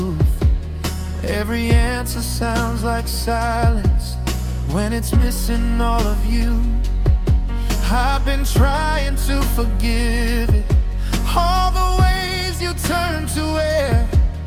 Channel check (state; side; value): identical; both; correlation 1.00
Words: Every answer sounds like silence when it's missing all of you. I've been trying to forgive it, all the ways you turn to air,